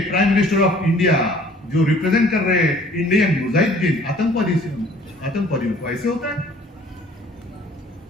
प्राइम मिनिस्टर ऑफ इंडिया जो रिप्रेजेंट कर रहे हैं इंडियन मुजाहिदीन, आतंकवादियों को। ऐसे होता है?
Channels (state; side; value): normal; both; correlation 0.54